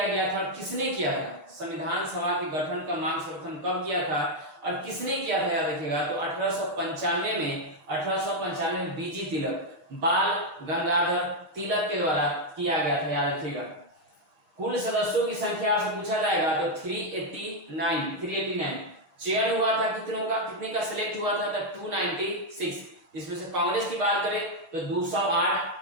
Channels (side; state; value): left; late; 6.4 ms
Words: गया था और किसने किया था? संविधान सभा के गठन का मांग सर्वप्रथम कब किया था और किसने किया था? याद रखिएगा, तो 1895 में बीजी तिलक, बाल गंगाधर तिलक के द्वारा किया गया था। याद रखिएगा। कुल सदस्यों की संख्या आपसे पूछा जाएगा तो 389। चयन हुआ था कितनों का? कितने का सिलेक्ट हुआ था? तो 296। इसमें से कांग्रेस की बात करें तो 208,